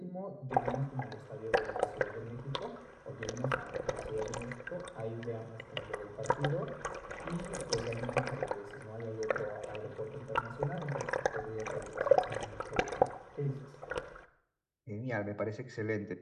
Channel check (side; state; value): both; identical; correlation 1.00